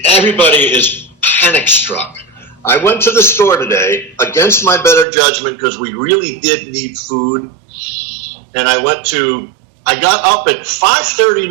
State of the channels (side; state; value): left; drops out; at 5.1 s